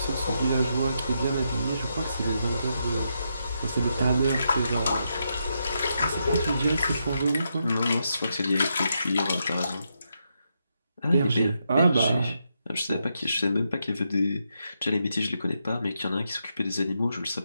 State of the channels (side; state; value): both; inverted; correlation -0.82